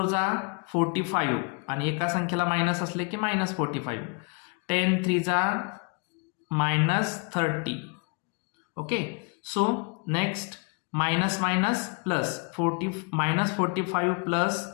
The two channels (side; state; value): right; quieter; 34.1 dB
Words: जा 45 आणि एका संख्येला मायनस असले की -45. 10 3 जा -30. Okay, so next minus minus plus -45 plus